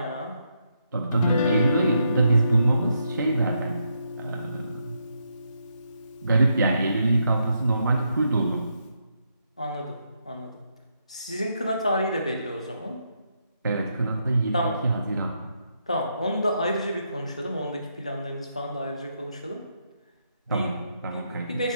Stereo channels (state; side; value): inverted; both; correlation -0.79